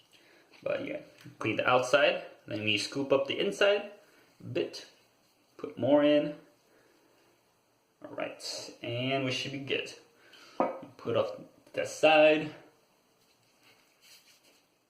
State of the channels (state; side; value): identical; both; correlation 1.00